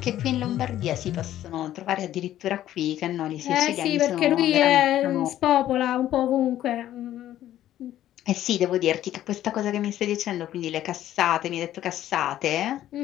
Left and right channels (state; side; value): quieter; right; 12.7 dB